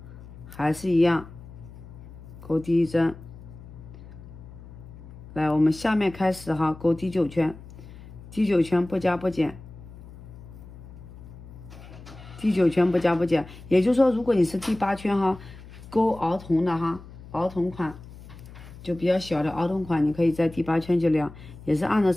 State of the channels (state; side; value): noise; left; hum, 17 dB below the sound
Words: 还是一样勾第1针。来，我们下面开始哈，勾第9圈，第9圈不加不减，第9圈不加不减。也就是说，如果你是第8圈哈，勾儿童的哈，儿童款就比较小的儿童款，你可以在第8圈就量，也是按照